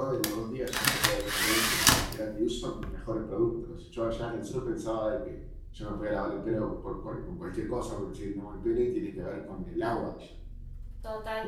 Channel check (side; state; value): both; identical; correlation 1.00